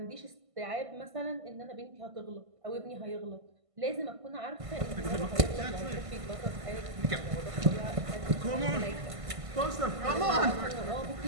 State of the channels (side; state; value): left; late; 1.5 ms